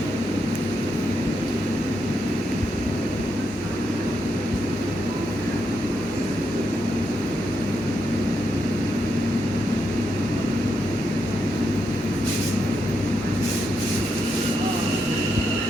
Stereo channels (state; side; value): normal; both; correlation 0.82